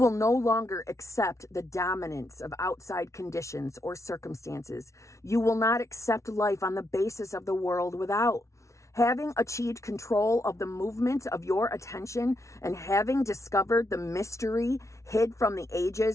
no longer accept the dominance of outside conditions or circumstances. You will not accept life on the basis of the world without. Having achieved control of the movement of your attention and having discovered the mystery hid from the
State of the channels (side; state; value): right; late; 0.14 ms